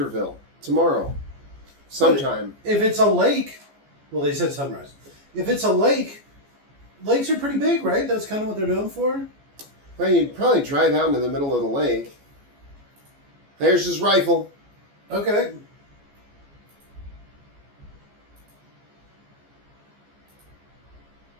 tomorrow. Sometime. If it's a lake, well, they said sunrise. If it's a lake, lakes are pretty big, right? That's kind of what they're known for. Well, you'd probably drive out into the middle of the lake. There's his rifle. Okay.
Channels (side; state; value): left; late; 14 ms